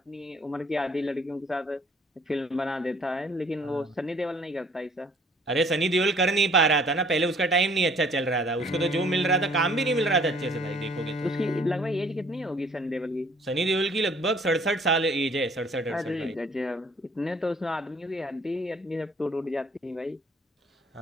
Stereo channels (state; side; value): normal; both; correlation 0.58